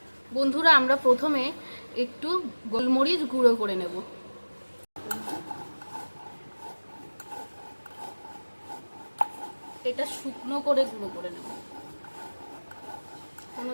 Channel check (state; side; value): inverted; both; correlation -1.00